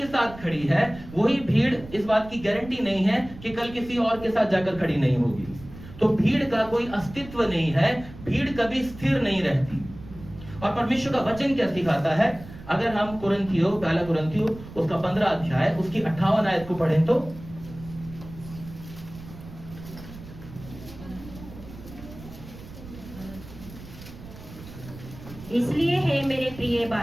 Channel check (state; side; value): noise; right; rumble, 16 dB below the sound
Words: साथ खड़ी है, वही भीड़ इस बात की गारंटी नहीं है कि कल किसी और के साथ जाकर खड़ी नहीं होगी। तो भीड़ का कोई अस्तित्व नहीं है, भीड़ कभी स्थिर नहीं रहती। और परमेश्वर का वचन क्या सिखाता है, अगर हम कुरिन्थियों, पहला कुरिन्थियों उसका 15 अध्याय उसकी 58 आयत को पढ़ें तो, इसलिए हे मेरे प्रिय